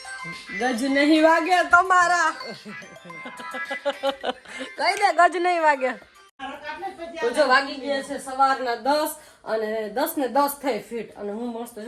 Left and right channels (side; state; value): both; identical; correlation 1.00